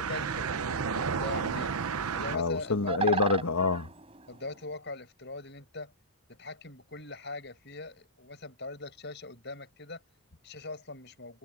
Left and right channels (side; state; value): both; normal; correlation -0.18